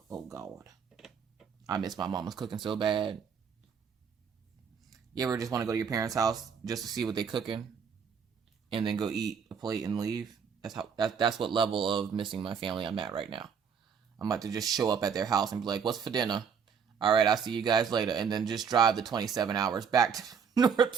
Oh, God. I miss my mama's cooking so bad. You ever just want to go to your parents' house just to see what they cooking and then go eat a plate and leave? That's what level of missing my family I'm at right now. I'm about to just show up at their house and be like, what's for dinner? All right, I'll see you guys later. And then just drive the 27 hours back to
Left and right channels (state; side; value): quieter; left; 6.7 dB